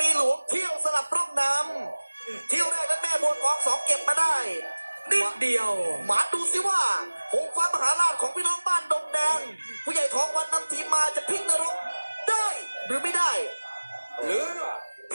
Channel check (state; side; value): inverted; both; correlation -1.00